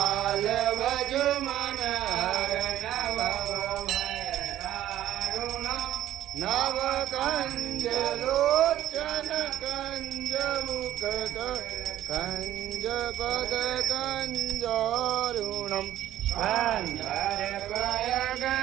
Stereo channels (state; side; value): quieter; left; 12.8 dB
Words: भज मन हर नव कंज लोचन कंज मुख कंज पद कंजारुणम गंधर्वय